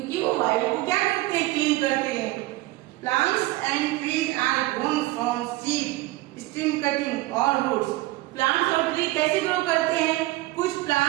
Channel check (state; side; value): quieter; left; 18.7 dB